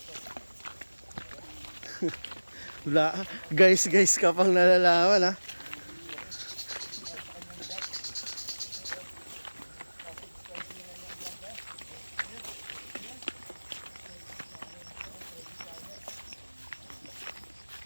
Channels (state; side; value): inverted; both; correlation -1.00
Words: Wala. Guys ka pang nalalaman ha.